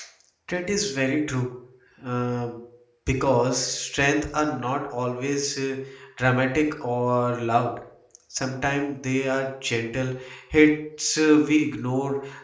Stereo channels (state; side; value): identical; both; correlation 1.00